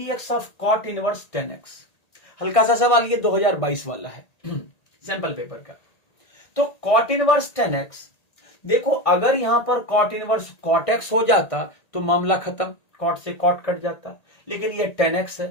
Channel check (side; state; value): right; late; 1.8 ms